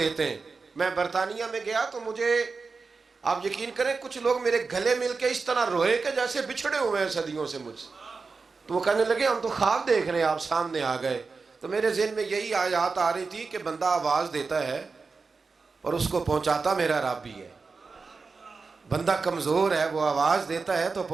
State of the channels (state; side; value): quieter; left; 4.5 dB